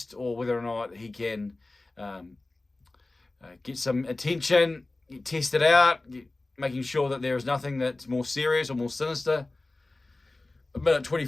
or whether or not he can get some attention, test it out, making sure that there is nothing that's more serious or more sinister. A minute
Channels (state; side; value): quieter; right; 3.0 dB